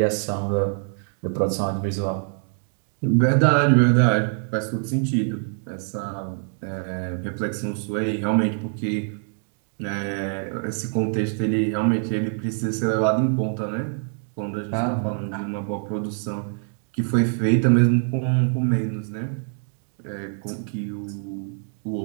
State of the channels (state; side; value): silent; left; 57 dB below the other